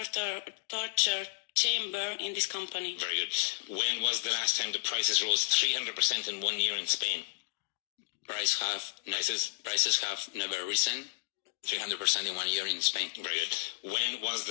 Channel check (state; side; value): silent; right; 56 dB below the other